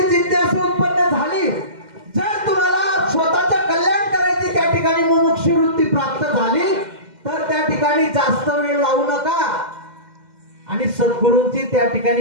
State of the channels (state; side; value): late; left; 2.1 ms